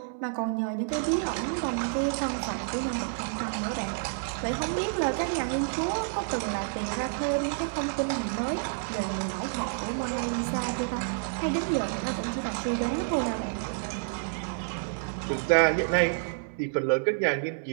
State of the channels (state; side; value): silent; left; 58 dB below the other